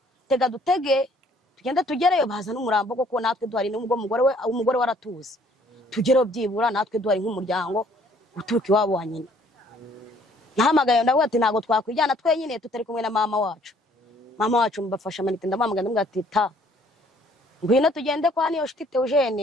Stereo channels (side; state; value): both; normal; correlation 0.61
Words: tega dutege tugende tugereyo, bazana umurambo koko natwe duhari, n'ubwo umugore we aratuzi, tugereyo byibura natwe duhari nk'umuryango uturuka iwabo wa nyina. Nahamagaye ndavuga ati ntago twakwijyana twenyine tutari kumwe na mama wacu. Mama wacu mbafasha manite, ndamamagara ndamubwira ati ta ngwino tugende kwa Niyonshuti